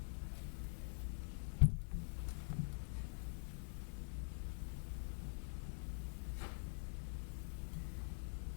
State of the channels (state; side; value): silent; right; digital silence